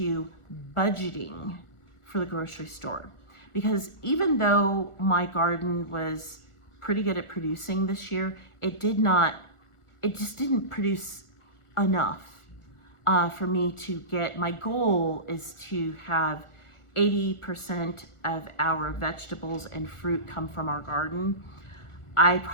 budgeting for the grocery store. Because even though my garden was pretty good at producing this year, it just didn't produce enough for me to get, my goal is to have 80% of our vegetables and fruit come from our garden. I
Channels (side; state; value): right; late; 1.4 ms